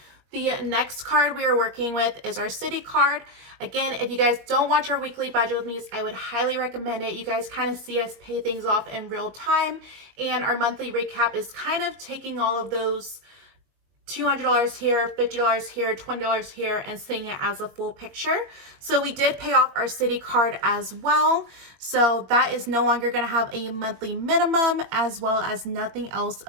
The next card we are working with is our Citi card. Again, if you guys don't watch our weekly budget with me, I would highly recommend it. You guys kind of see us pay things off in real time, and our monthly recap is kind of taking all of those $200 here, $50 here, $20 here, and seeing it as a full picture. So we did pay off our Citi card as well. So that is no longer going to have a monthly minimum, as well as nothing else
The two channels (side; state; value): left; late; 21 ms